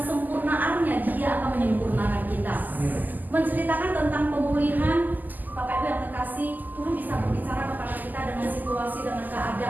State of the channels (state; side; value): late; left; 0.084 ms